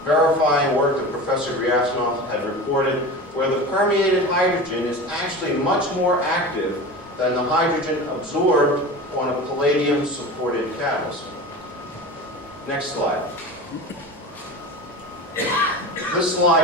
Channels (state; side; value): normal; both; correlation 0.32